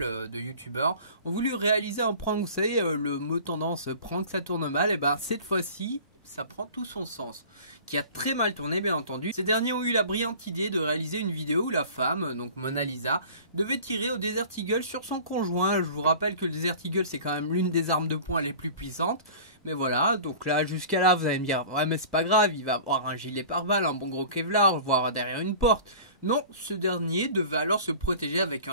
de youtubeurs, ont voulu réaliser un prank. Vous savez, le mot tendance prank ça tourne mal, et ben cette fois-ci ça prend tout son sens, qui a très mal tourné bien entendu. Ces derniers ont eu la brillante idée de réaliser une vidéo où la femme, donc Mona Lisa, devait tirer au Desert Eagle sur son conjoint. Je vous rappelle que le Desert Eagle c'est quand même l'une des armes de poing les plus puissantes. Mais voilà, donc là jusqu'à là vous allez me dire, ouais mais c'est pas grave, il va avoir un gilet pare-balles, un bon gros Kevlar, voire derrière une porte. Non, ce dernier devait alors se protéger avec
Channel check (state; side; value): inverted; both; correlation -0.42